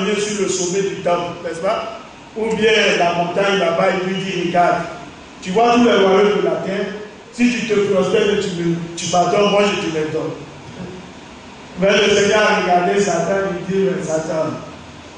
sur le sommet du temple, n'est-ce pas? Ou bien la montagne là-bas, il lui dit, regarde, tu vois tous les royaumes de la terre, si tu te prospères et tu m'adores, moi je te les donne. Mais le Seigneur a regardé Satan et lui dit, Satan,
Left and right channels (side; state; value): both; identical; correlation 1.00